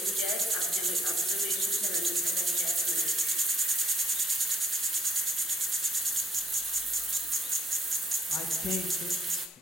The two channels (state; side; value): normal; both; correlation 0.71